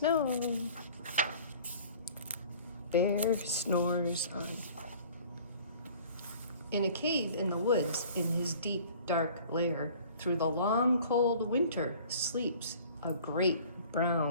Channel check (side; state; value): both; inverted; correlation -0.49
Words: Bear snores on. In a cave in the woods, in his deep, dark lair, through the long, cold winter, sleeps a great